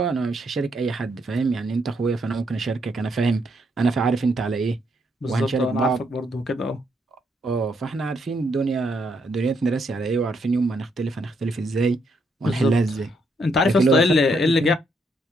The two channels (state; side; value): normal; both; correlation 0.75